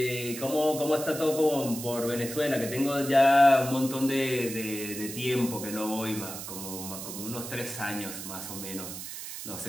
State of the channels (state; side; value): noise; right; hiss, 9 dB below the sound